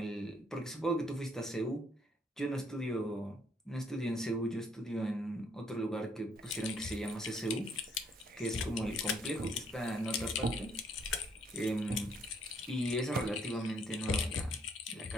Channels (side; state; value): both; normal; correlation 0.68